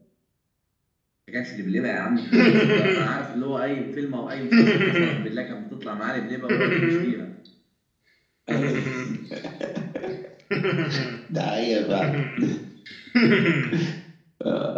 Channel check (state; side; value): identical; both; correlation 1.00